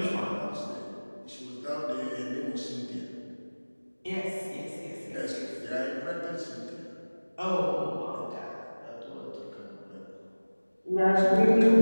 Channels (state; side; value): inverted; both; correlation -1.00